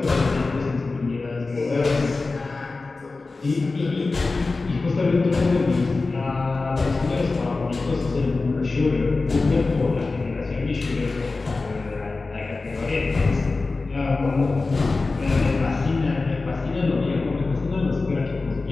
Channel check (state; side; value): quieter; right; 3.7 dB